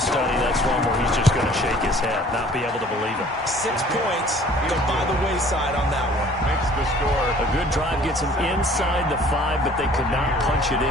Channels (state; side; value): normal; both; correlation 0.53